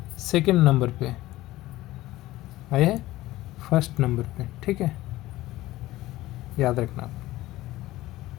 सेकंड नंबर पे, आया है फर्स्ट नंबर पे। ठीक है, याद रखना आप।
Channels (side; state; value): right; quieter; 16.9 dB